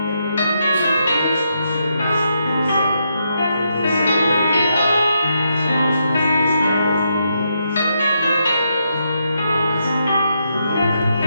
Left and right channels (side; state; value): both; inverted; correlation -0.80